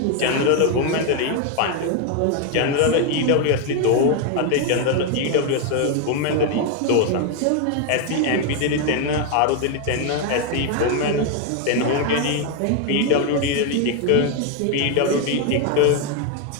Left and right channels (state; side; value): different; both; correlation 0.01